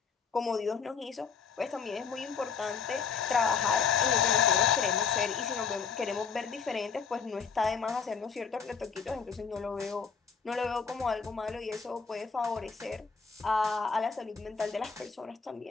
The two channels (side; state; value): right; quieter; 6.1 dB